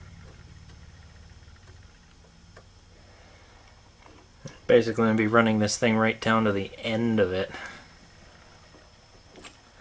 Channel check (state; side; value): identical; both; correlation 1.00